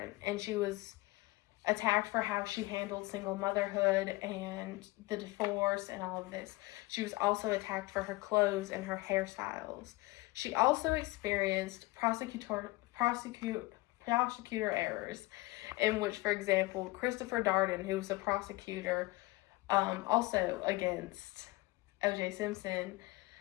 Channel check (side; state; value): right; quieter; 21.4 dB